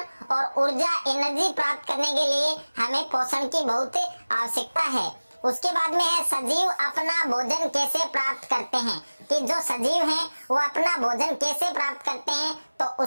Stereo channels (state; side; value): inverted; both; correlation -1.00